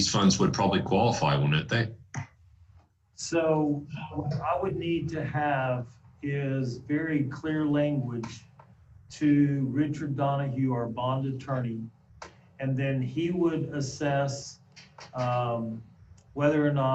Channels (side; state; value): both; identical; correlation 1.00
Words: funds would probably qualify, wouldn't they? So what I would need to have is very clear language to Richard Donahue, our bond attorney, and then he would assess whether or